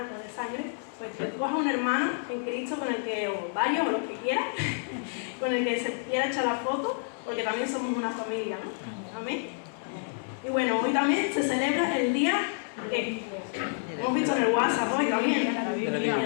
o de sangre, pues que coja un hermano en Cristo con el que, o varios, o los que quiera, con el que se quiera echar la foto, porque también somos una familia, ¿no? Amén. Y bueno, hoy también se celebra el día que hemos visto en el WhatsApp hoy también,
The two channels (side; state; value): right; silent; digital silence